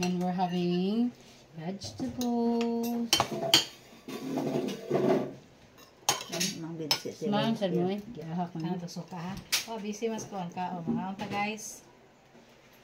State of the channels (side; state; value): both; identical; correlation 1.00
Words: and we're having vegetables. Smahan sa mo eh. Gihahak mo. Ano to suka ha? Oh, busy mas kuhan ka. Oh, mga unta guys.